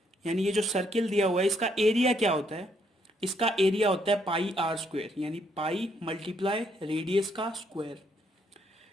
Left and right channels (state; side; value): normal; both; correlation 0.72